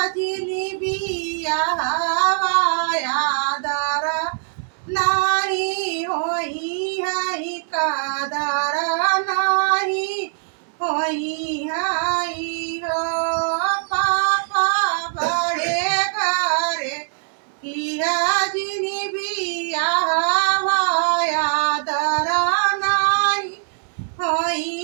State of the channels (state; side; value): silent; left; digital silence